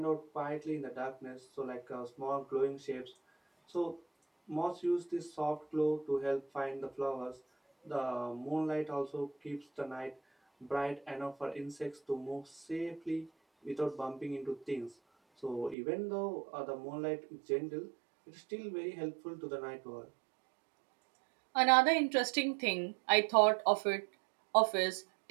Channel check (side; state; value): left; drops out; at 15.8 s